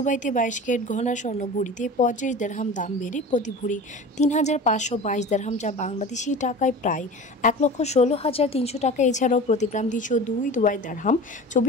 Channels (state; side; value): normal; both; correlation 0.35